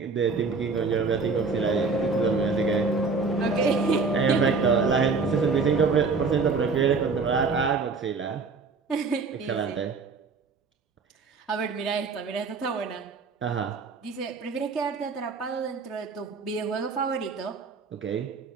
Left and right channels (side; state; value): left; quieter; 4.5 dB